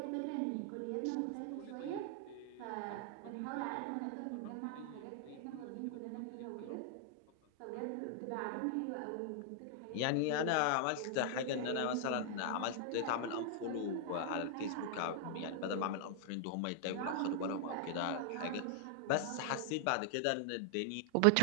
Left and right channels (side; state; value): both; different; correlation 0.00